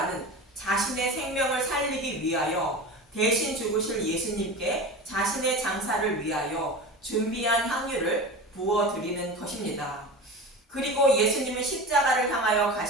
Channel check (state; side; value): normal; both; correlation 0.31